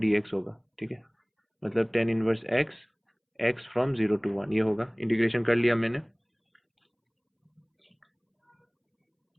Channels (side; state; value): both; identical; correlation 1.00